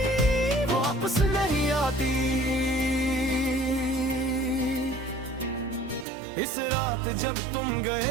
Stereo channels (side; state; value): left; drops out; at 6.1 s